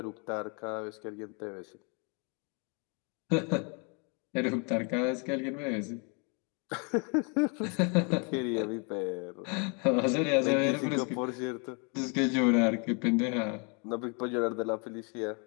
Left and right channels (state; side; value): quieter; right; 35.1 dB